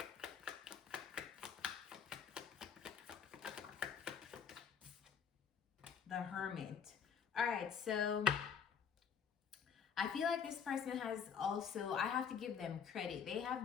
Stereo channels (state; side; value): quieter; right; 7.2 dB